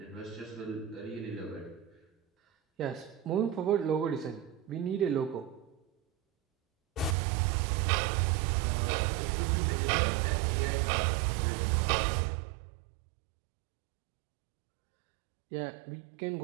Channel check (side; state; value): left; drops out; at 7.2 s